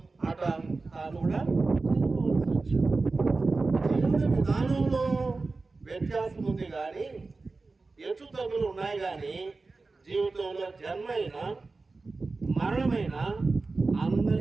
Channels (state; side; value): quieter; left; 3.8 dB